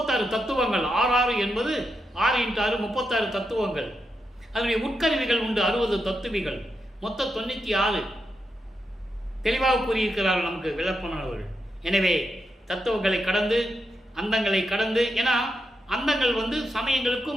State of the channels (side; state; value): both; normal; correlation 0.85